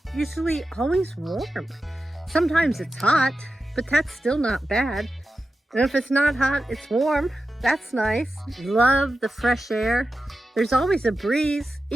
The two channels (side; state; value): both; normal; correlation 0.92